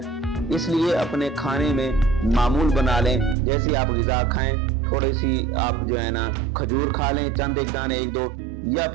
इसलिए अपने खाने में मामूल बना लें, जैसे आप ग़िज़ा खाएं थोड़ी सी आप जो है ना खजूर खा लें, चंद एक दाने, एक दो, या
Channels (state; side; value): drops out; left; at 3.4 s